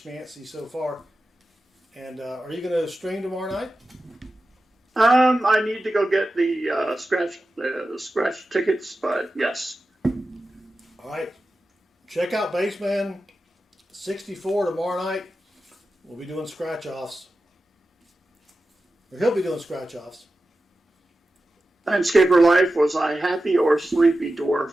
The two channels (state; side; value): normal; both; correlation 0.93